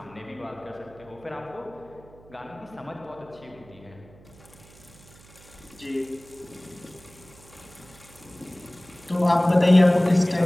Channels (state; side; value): noise; right; hum, 23 dB below the sound